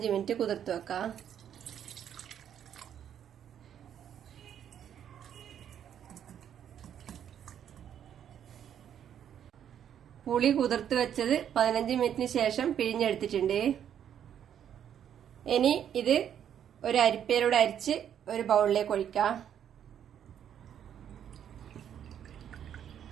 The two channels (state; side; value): quieter; left; 9.4 dB